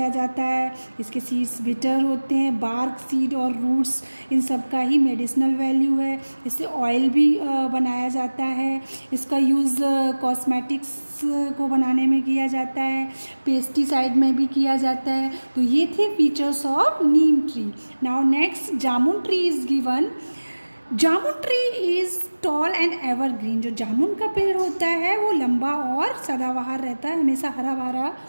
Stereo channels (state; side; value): inverted; both; correlation -1.00